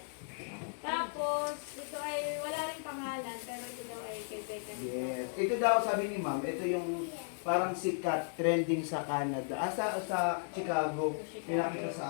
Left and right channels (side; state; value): right; silent; digital silence